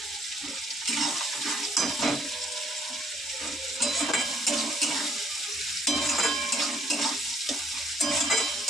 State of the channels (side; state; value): both; normal; correlation 0.64